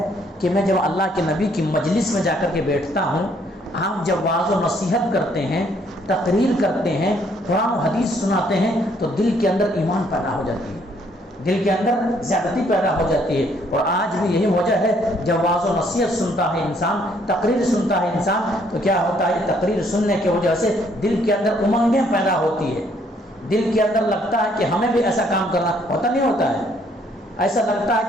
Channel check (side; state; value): both; normal; correlation 0.66